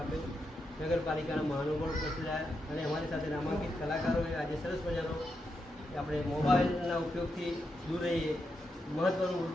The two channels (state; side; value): normal; both; correlation 0.85